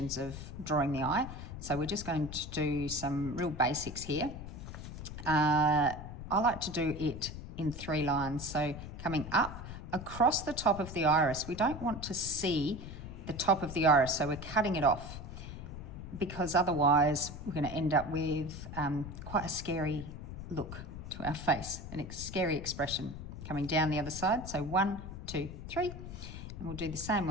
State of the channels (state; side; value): noise; left; rumble, 10 dB below the sound